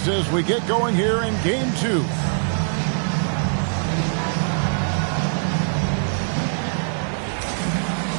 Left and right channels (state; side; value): silent; left; digital silence